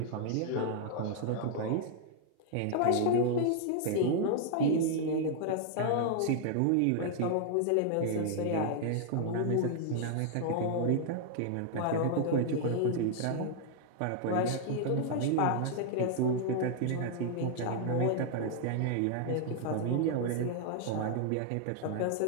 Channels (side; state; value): both; different; correlation -0.01